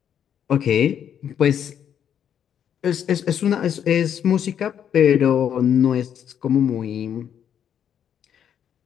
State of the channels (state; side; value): quieter; right; 9.0 dB